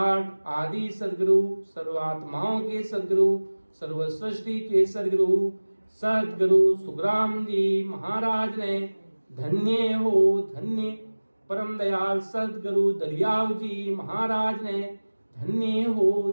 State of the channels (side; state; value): both; inverted; correlation -1.00